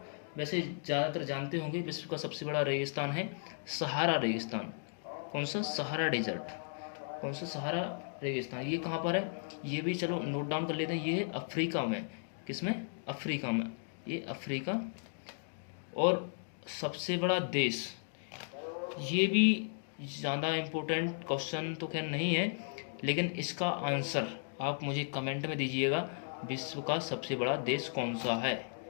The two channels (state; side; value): silent; right; digital silence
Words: वैसे ज़्यादातर जानते होंगे। विश्व का सबसे बड़ा रेगिस्तान है सहारा रेगिस्तान। कौन सा, सहारा डेजर्ट। कौन सा, सहारा रेगिस्तान। ये कहाँ पर है, ये भी चलो नोट डाउन कर लेते हैं। ये है अफ्रीका में, किसमें, अफ्रीका में, ये अफ्रीका। और सबसे बड़ा देश, ये भी ज़्यादा इम्पोर्टेंट क्वेश्चन तो खैर नहीं है, लेकिन इसका आंसर आप मुझे कमेंट में दीजिएगा, विश्व का सबसे बड़ा देश कौन सा है।